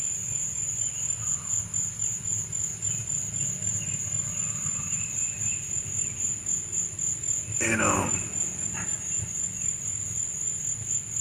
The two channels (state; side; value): identical; both; correlation 1.00